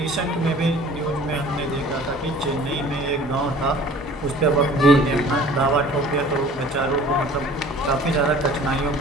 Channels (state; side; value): normal; both; correlation 0.48